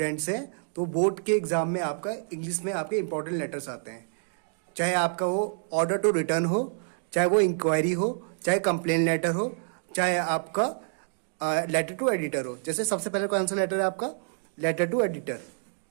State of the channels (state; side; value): silent; left; digital silence